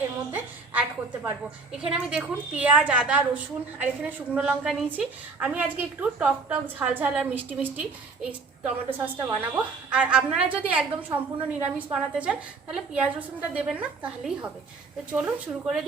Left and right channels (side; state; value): left; quieter; 4.3 dB